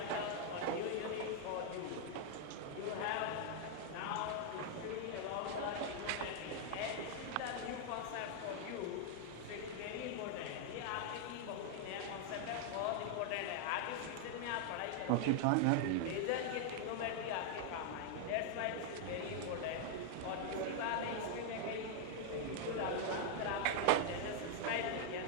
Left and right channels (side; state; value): both; different; correlation 0.00